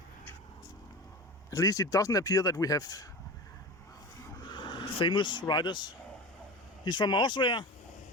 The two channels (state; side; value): normal; both; correlation 0.29